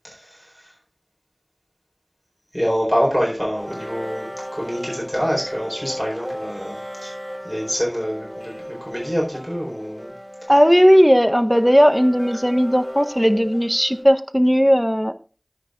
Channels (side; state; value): both; identical; correlation 1.00